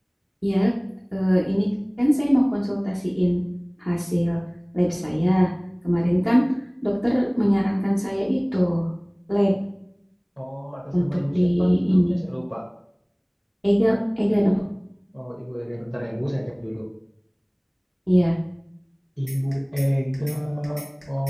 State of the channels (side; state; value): both; identical; correlation 1.00